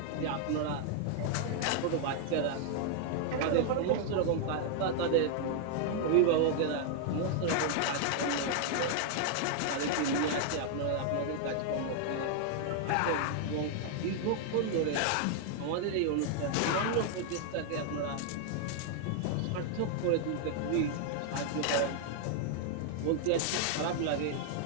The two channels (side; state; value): both; different; correlation 0.00